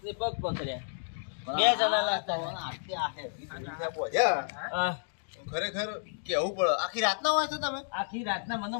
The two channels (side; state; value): right; silent; digital silence